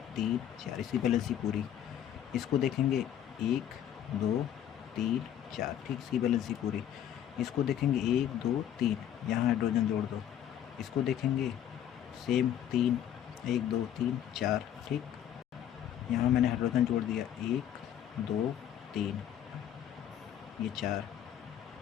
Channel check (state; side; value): quieter; right; 10.4 dB